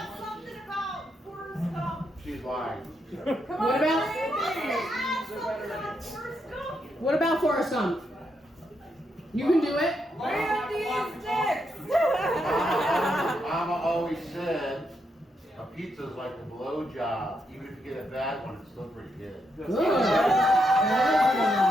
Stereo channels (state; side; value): normal; both; correlation 0.80